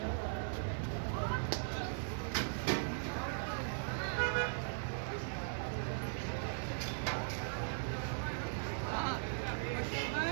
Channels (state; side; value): silent; left; digital silence